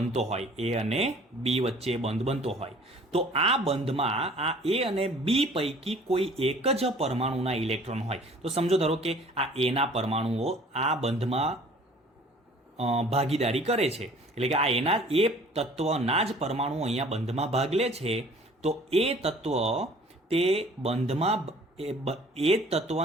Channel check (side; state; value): both; normal; correlation 0.51